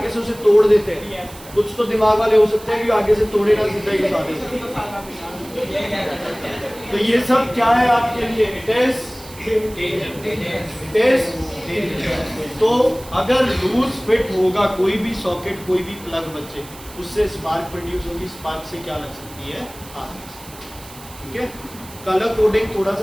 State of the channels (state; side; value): noise; right; hiss, 18 dB below the sound